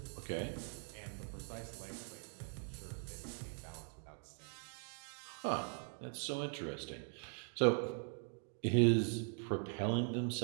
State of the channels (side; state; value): left; silent; 50 dB below the other